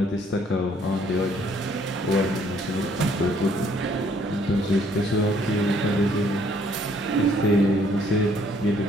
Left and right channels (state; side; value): normal; both; correlation 0.64